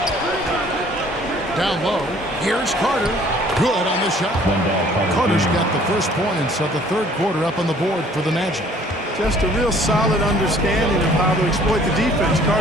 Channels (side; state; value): both; normal; correlation 0.56